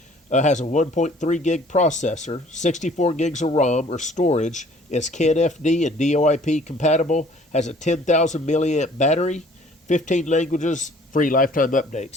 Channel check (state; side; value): normal; both; correlation 0.54